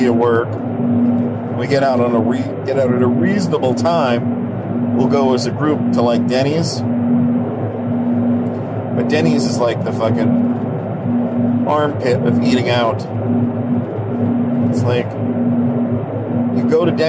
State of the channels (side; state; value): both; identical; correlation 1.00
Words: at work, we get out at a reasonable time. We'll go as a group to, like, Denny's. But Denny's is like the fucking armpit of eating out. It's like, you go to